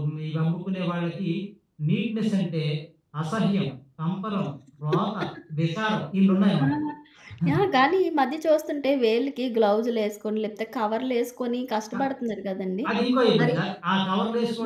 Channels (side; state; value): both; identical; correlation 1.00